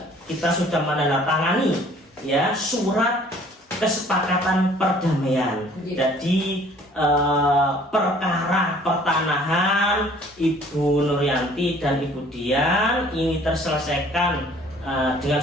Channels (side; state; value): both; normal; correlation 0.55